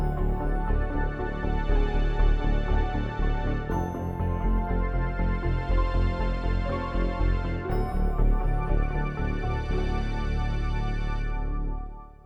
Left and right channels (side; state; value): both; identical; correlation 1.00